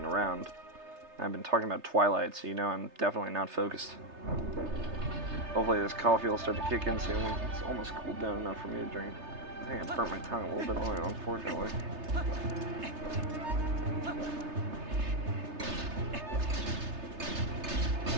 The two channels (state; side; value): late; left; 3.3 ms